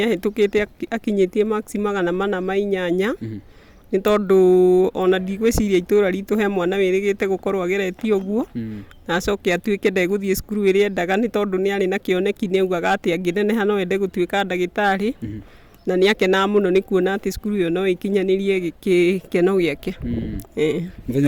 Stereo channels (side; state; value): both; identical; correlation 1.00